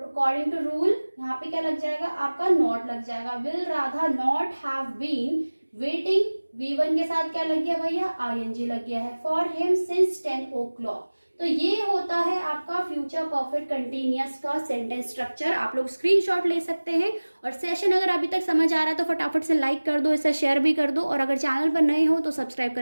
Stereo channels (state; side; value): inverted; both; correlation -1.00